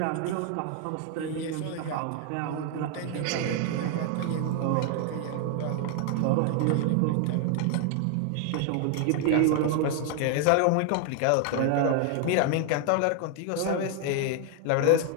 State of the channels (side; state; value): both; different; correlation 0.00